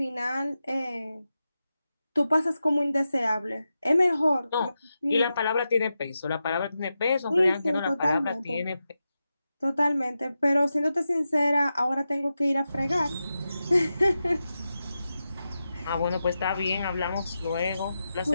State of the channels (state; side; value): inverted; both; correlation -0.90